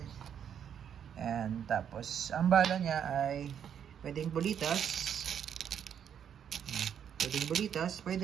And tapos, ang bala niya ay pwedeng bulitas. Pwedeng bulitas,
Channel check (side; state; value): left; quieter; 8.6 dB